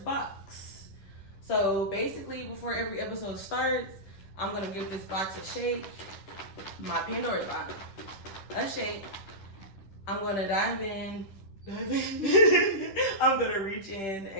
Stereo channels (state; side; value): late; right; 10 ms